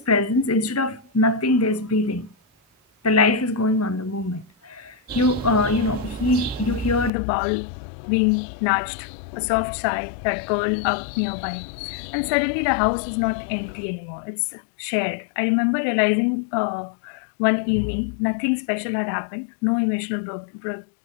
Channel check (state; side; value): drops out; right; at 7.1 s